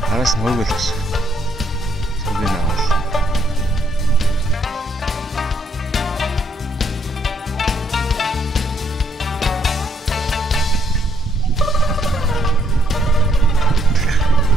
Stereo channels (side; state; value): both; normal; correlation 0.71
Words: Араас нь хөөгөл гэж. Цогын авал.